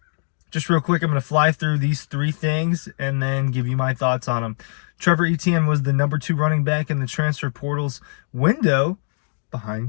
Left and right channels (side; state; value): right; silent; digital silence